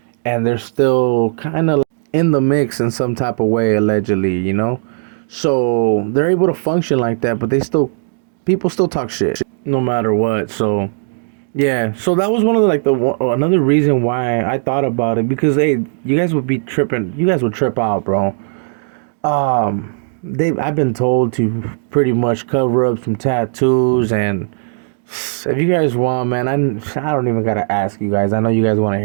and they're still kind of in the mix in some type of way, allegedly. So they're able to function like that, but people still talk shit no matter what. So yeah, so that was one of another reason why I thought about it, because hey, you guys would be tripping. You guys would trip out, bro. I've been told to pretty much cover up some tattoos, and if you guys want, man, I don't even gotta ask you guys. I know you guys want to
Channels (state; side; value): silent; left; digital silence